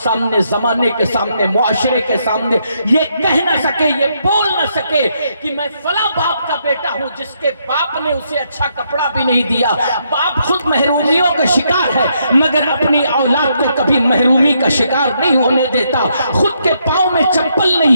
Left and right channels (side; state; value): both; inverted; correlation -0.76